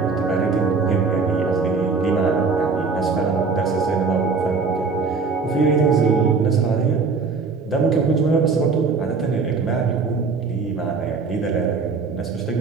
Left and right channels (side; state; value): left; quieter; 4.7 dB